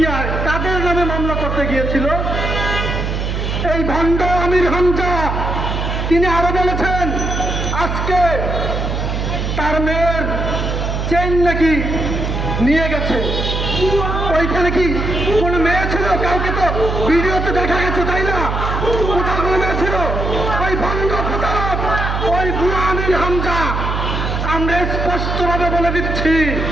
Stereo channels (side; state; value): right; noise; hum, 2 dB below the sound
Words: কাদের নামে মামলা করতে গিয়েছিল? এই ভণ্ড আমির হামজা তিনি আরো বলেছেন আজকে তার মেয়ের চেইন নাকি নিয়ে গেছে। ওইখানে কি কোন মেয়ে ছিল? কাউকে তো ভিডিওতে দেখা গেছে, তাই না? কোথাও কোনো মেয়ে ছিল? ওই ভণ্ড প্রতারক, ওই বুড়া আমির হামজা। আমরা স্পষ্টভাবে বলে দিচ্ছি